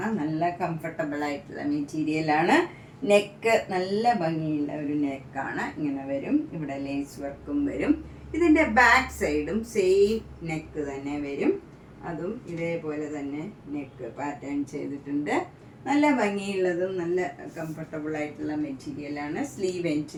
നല്ല കംഫർട്ടബിൾ ആയിട്ടുള്ള മെറ്റീരിയലാണ്. നെക്ക് നല്ല ഭംഗിയുള്ള ഒരു നെക്കാണ്, ഇങ്ങനെ വരും. ഇവിടെ ലേസ് വർക്കും വരും. ഇതിൻ്റെ ബാക്ക് സൈഡും സെയിം നെക്ക് തന്നെ വരും, അതും ഇതേപോലെ തന്നെ നെക്ക് പാറ്റേൺ ചെയ്തിട്ടുണ്ട്. നല്ല ഭംഗിയുള്ളതും നല്ല കംഫർട്ടബിൾ ആയിട്ടുള്ള മെറ്റീരിയലാണ്. സ്ലീവ്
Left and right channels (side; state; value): both; identical; correlation 1.00